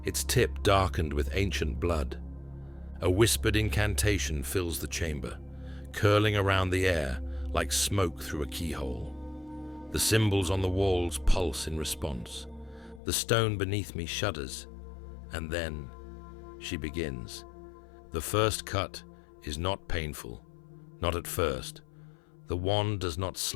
its tip darkened with ancient blood. A whispered incantation fills the chamber, curling around the air like smoke through a keyhole. The symbols on the walls pulse in response. The stone beneath me shudders, And then she begins. The first cut is not painful, not at first. The wand does not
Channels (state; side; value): drops out; right; at 13.0 s